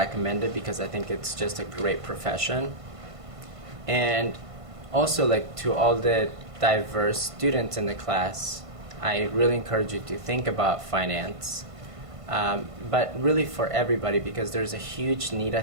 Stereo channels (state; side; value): late; left; 1.5 ms